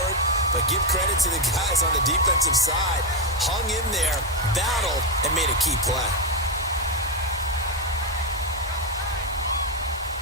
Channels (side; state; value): both; normal; correlation 0.06